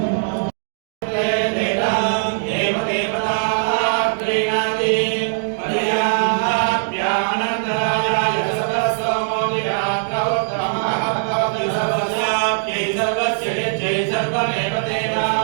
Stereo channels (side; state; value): left; silent; digital silence